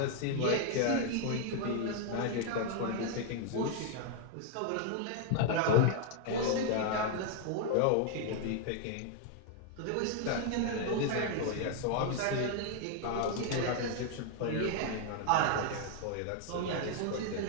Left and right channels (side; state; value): both; different; correlation 0.00